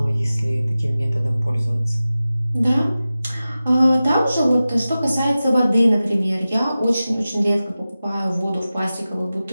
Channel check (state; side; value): inverted; both; correlation -0.95